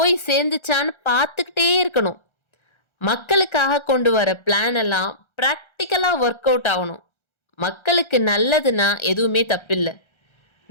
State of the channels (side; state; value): right; late; 1.3 ms